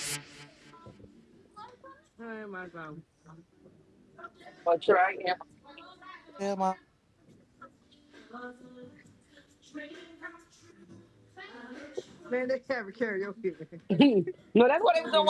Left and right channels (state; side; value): identical; both; correlation 1.00